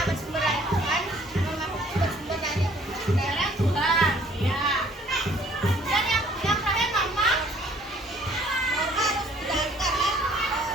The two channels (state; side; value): normal; both; correlation 0.58